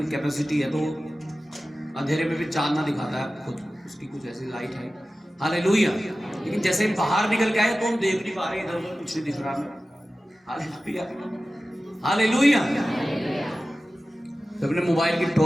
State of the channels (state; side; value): normal; both; correlation 0.95